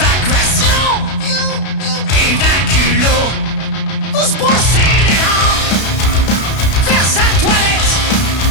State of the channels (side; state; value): right; late; 32 ms